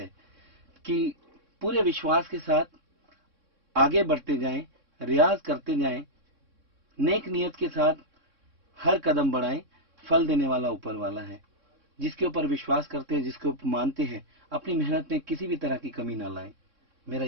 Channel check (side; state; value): left; late; 3.6 ms